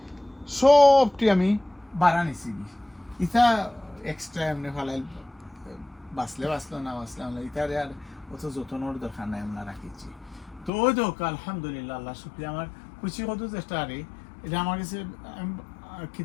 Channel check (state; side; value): drops out; right; at 10.7 s